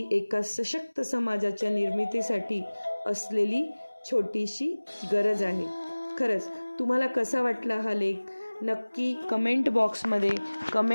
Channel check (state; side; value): inverted; both; correlation -1.00